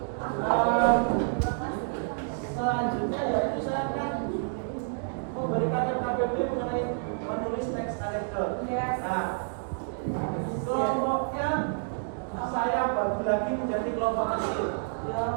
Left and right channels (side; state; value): left; silent; digital silence